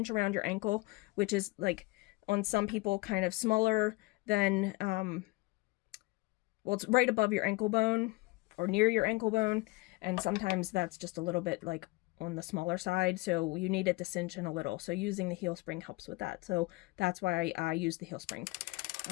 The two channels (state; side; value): quieter; right; 22.8 dB